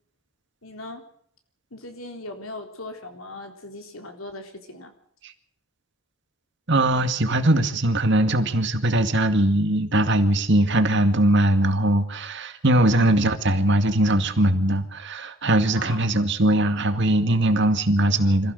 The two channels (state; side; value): normal; both; correlation 0.60